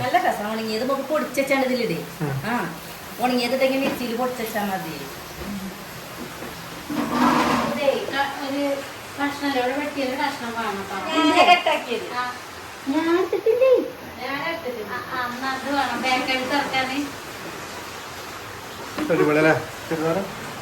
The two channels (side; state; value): both; identical; correlation 1.00